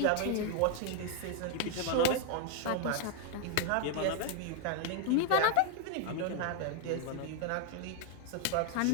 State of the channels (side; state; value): both; different; correlation 0.01